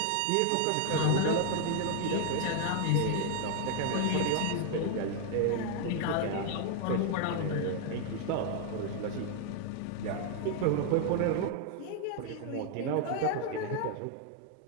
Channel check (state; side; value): different; both; correlation 0.00